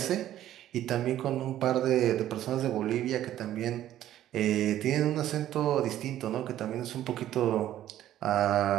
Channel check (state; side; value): quieter; left; 12.6 dB